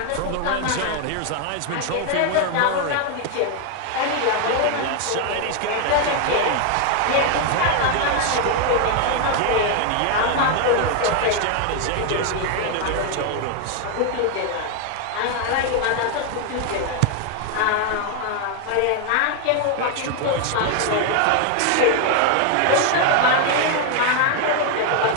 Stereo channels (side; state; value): both; different; correlation 0.00